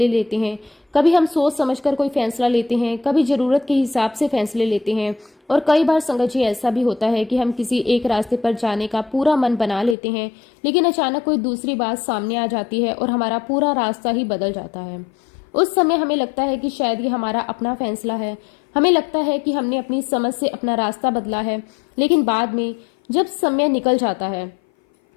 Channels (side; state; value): right; drops out; at 10.0 s